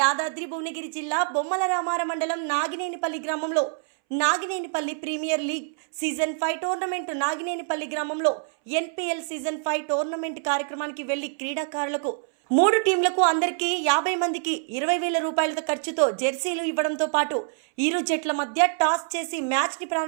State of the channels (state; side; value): silent; left; 61 dB below the other